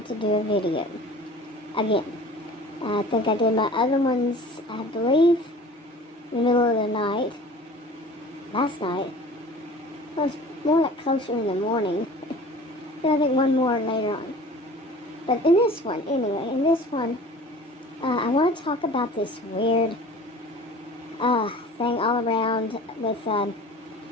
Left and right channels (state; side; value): normal; both; correlation 0.43